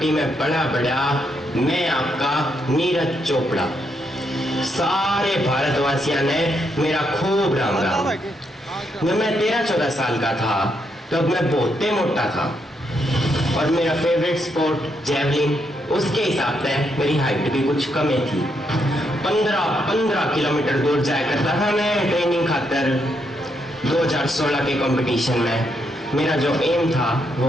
में पला बड़ा मैं आपका नीरज चोपड़ा। सारे भारतवासियों ने मेरा खूब राम राम। जब मैं 13-14 साल का था तब मैं बहुत मोटा था और मेरा फेवरेट स्पोर्ट जेवलिन, उसके हिसाब से मेरी हाइट भी कुछ कम ही थी। 15 किलोमीटर दूर जाया करता था मैं ट्रेनिंग खातर। 2016 के कंपटीशन में मेरा जो एम था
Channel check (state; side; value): normal; both; correlation 0.78